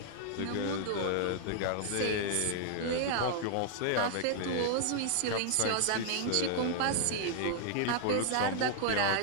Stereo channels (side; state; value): both; different; correlation 0.00